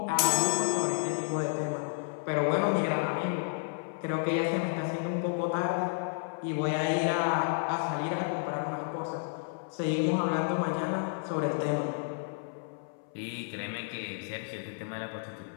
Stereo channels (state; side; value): silent; right; 56 dB below the other